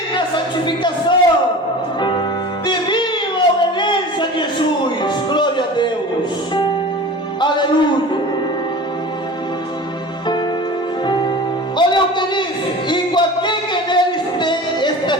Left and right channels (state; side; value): normal; both; correlation 0.37